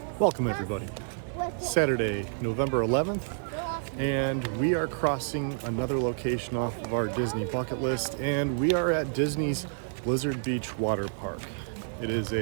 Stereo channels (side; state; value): left; silent; digital silence